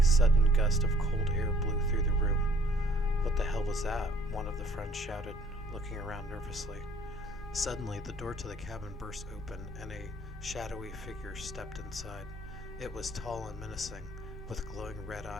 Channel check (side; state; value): both; normal; correlation 0.58